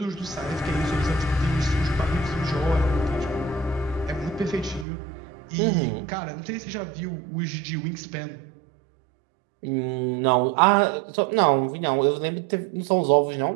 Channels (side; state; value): left; drops out; at 4.9 s